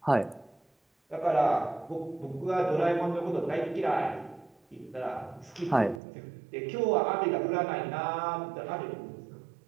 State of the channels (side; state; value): left; drops out; at 6.0 s